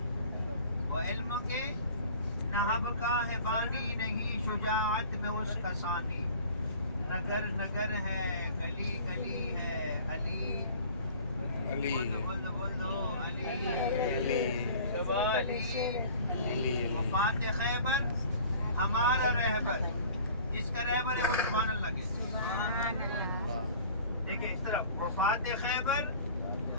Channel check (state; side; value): inverted; both; correlation -0.46